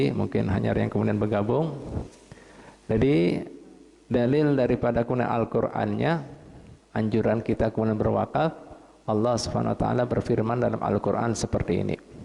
mungkin hanya yang kemudian bergabung. Jadi dalil daripada kemudian Al-Qur'annya, anjuran kita kemudian berwakaf. Allah Subhanahu wa taala berfirman dalam Al-Qur'an seperti ini.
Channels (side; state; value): both; identical; correlation 1.00